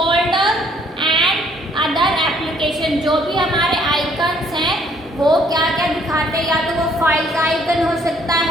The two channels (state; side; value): normal; both; correlation 0.64